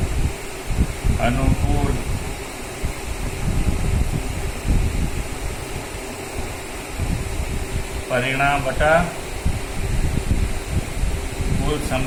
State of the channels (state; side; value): identical; both; correlation 1.00